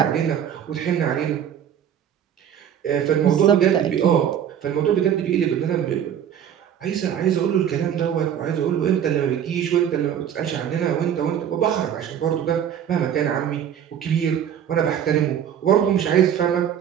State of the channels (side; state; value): left; quieter; 9.3 dB